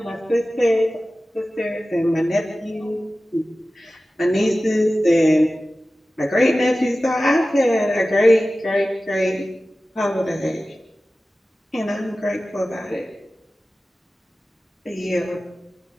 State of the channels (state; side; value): normal; both; correlation 0.96